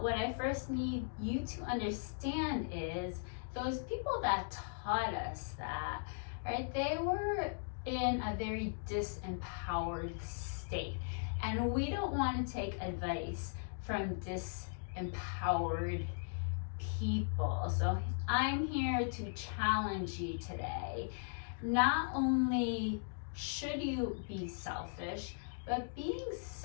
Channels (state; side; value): silent; right; digital silence